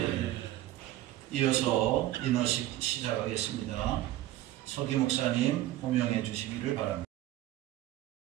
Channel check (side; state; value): left; quieter; 14.7 dB